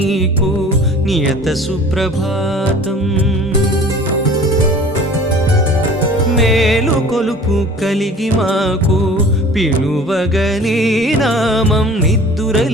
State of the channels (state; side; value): normal; both; correlation 0.45